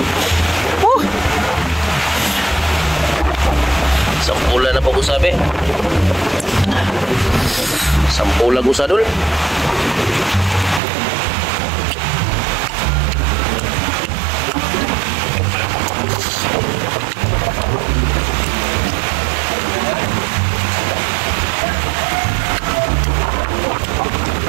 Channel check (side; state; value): left; drops out; at 10.8 s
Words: Sampulan na po ko sabi. Sampulan ko sa dul.